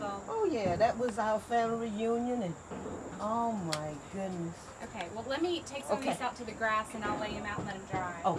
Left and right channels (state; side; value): identical; both; correlation 1.00